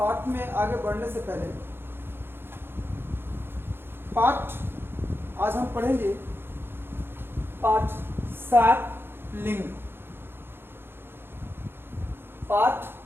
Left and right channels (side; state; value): left; late; 0.11 ms